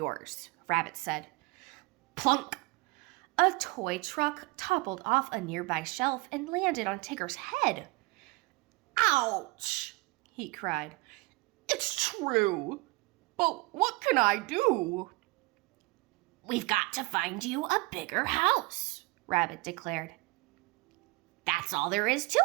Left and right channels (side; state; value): left; quieter; 24.0 dB